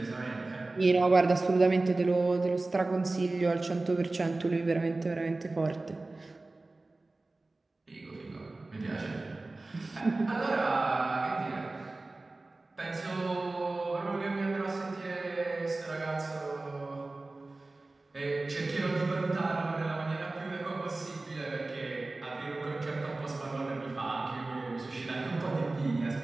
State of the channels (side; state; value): left; quieter; 3.2 dB